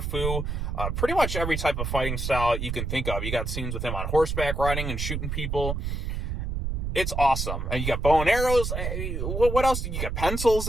fu, pretty much every type of fighting style you can think of. You got scenes with him on horseback riding and shooting people. It's awesome. And you got bow and arrows. What else? You got pencils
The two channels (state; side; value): noise; right; rumble, 2 dB below the sound